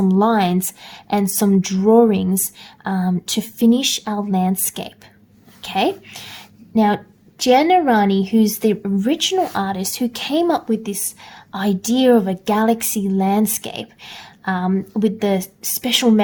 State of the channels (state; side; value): identical; both; correlation 1.00